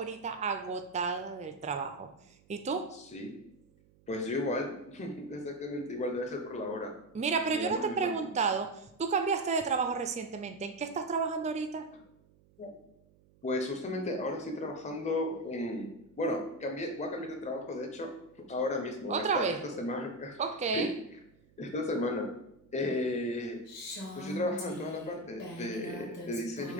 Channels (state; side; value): noise; right; hum, 29 dB below the sound